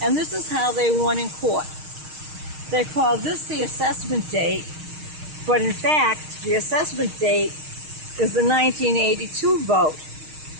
And this is how they won in court. They called this the assessment date, but in fact, the assessment date is the 1982 vote.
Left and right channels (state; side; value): late; left; 6.4 ms